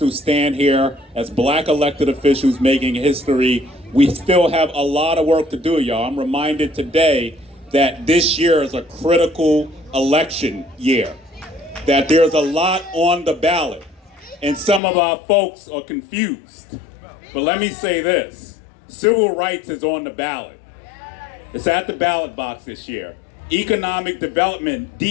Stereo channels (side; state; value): right; drops out; at 14.8 s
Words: to stand here as black elected officials making history. We still have a lot of work to do, y'all. I'm reminded today that this year is a critical election year, that there's a lot on the ballot, and some of our folks are confused. But let me say this, civil rights is on the ballot. It's at the ballot box this year. Economic development,